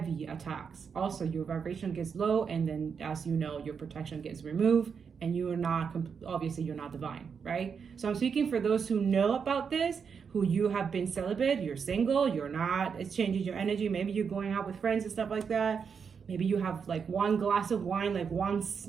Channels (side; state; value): left; quieter; 6.3 dB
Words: attacks. Also, your vibration gets low, and then as you know, your protection gets removed, and you're not, obviously you're not divine, right? So I'm speaking for those who know about this, who you have been celibate, you're single, you're not, it's changing your energy. Maybe you're going out with friends and stuff like that. Maybe you have like one glass of wine, like once,